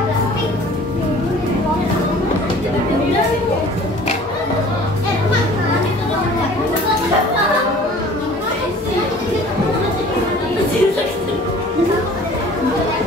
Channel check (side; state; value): both; normal; correlation 0.48